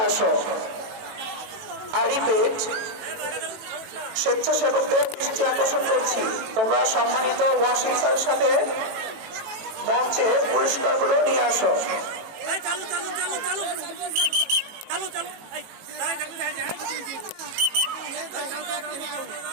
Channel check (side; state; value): left; late; 18 ms